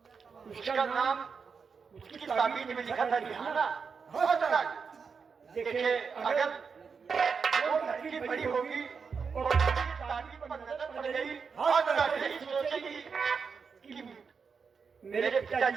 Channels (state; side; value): quieter; left; 5.6 dB